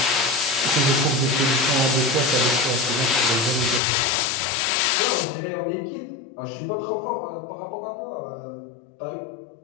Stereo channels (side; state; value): right; drops out; at 3.8 s